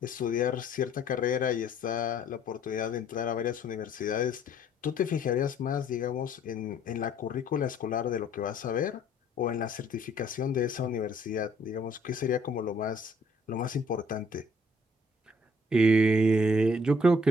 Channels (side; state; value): both; normal; correlation 0.62